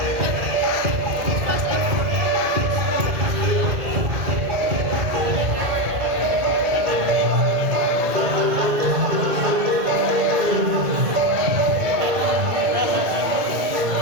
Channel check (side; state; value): left; late; 2.2 ms